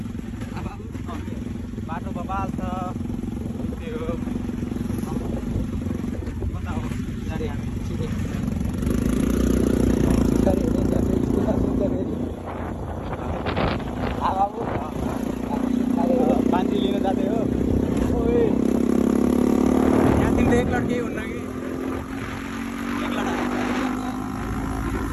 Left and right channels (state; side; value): identical; both; correlation 1.00